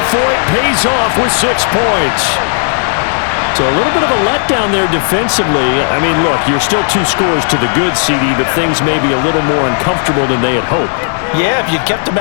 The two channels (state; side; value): silent; right; digital silence